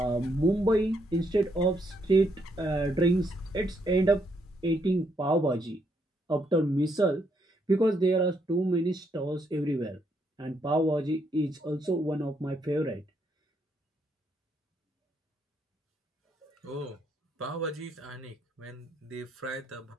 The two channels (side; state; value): both; normal; correlation 0.75